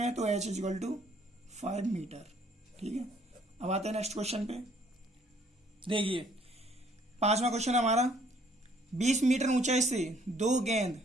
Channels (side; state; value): both; normal; correlation 0.62